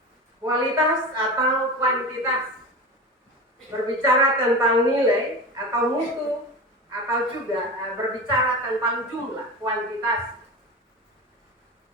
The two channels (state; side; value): normal; both; correlation 0.28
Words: kualitas atau kuantitas. Berbicara tentang nilai atau mutu, atau juga berbicara tentang jumlah, kuantitas.